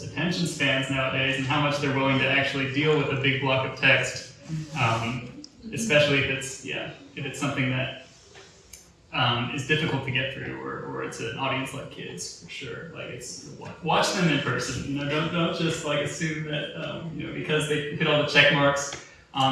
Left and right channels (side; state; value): both; identical; correlation 1.00